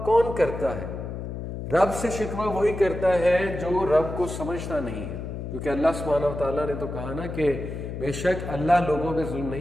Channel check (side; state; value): left; noise; hum, 7 dB below the sound